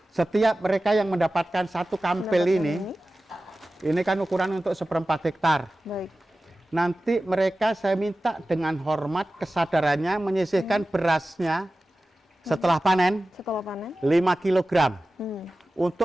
Setiap mereka yang mendapatkan satu kampil ini kan ukuran untuk 1/4 hektar. Baik. Nanti mereka saya minta dengan hormat kesadarannya menyisihkan berasnya setelah panen, 5 kilogram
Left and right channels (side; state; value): both; normal; correlation 0.95